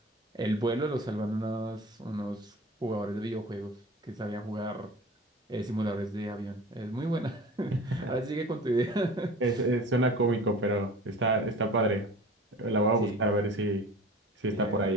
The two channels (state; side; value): normal; both; correlation 0.39